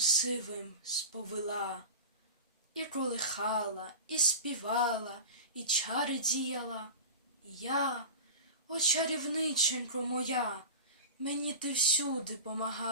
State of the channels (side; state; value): both; inverted; correlation -0.31